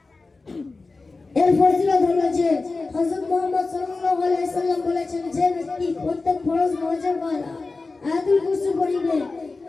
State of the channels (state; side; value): quieter; right; 3.7 dB